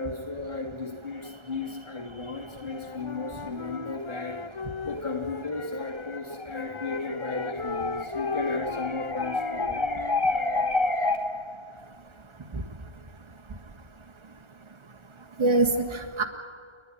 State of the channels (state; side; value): late; left; 1.4 ms